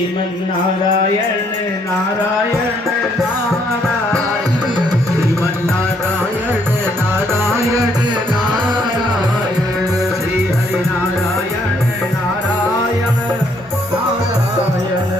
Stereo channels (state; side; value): normal; both; correlation 0.69